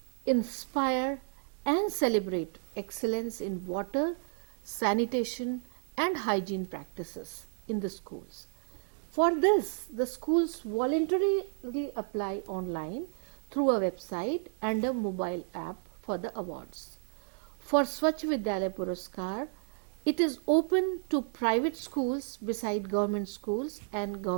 inspire and celebrate excellence in water, sanitation and hygiene practices in the schools. For this, the schools voluntarily apply online through a website and a mobile app for the awards. For Swachh Vidyalaya Puraskar, it is open to private schools beside government schools and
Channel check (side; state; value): left; silent; 56 dB below the other